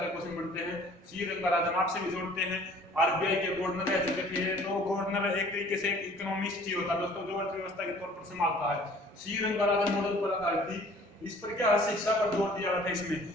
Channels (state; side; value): normal; both; correlation 0.52